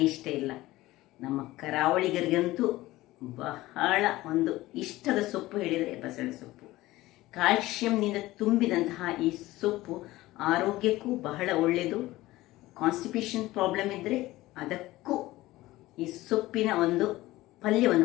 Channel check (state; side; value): quieter; right; 17.7 dB